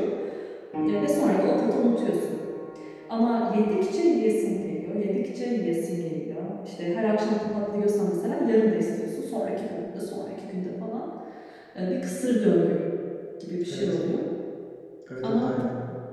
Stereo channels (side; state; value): both; identical; correlation 1.00